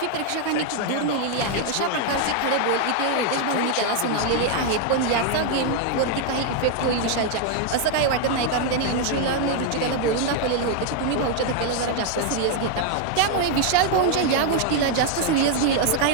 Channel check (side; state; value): both; different; correlation 0.00